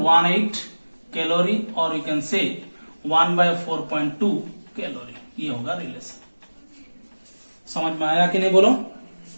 calorie और यू कैन से 1/4.2 कैलोरी। ये होगा रिलेशन। समझ में आया कि नहीं? बोलो,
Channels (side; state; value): both; inverted; correlation -1.00